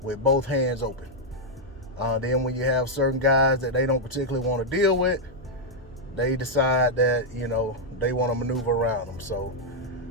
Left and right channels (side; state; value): both; normal; correlation -0.04